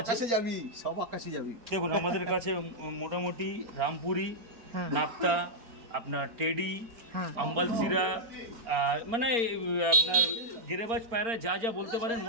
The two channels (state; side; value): late; left; 4.3 ms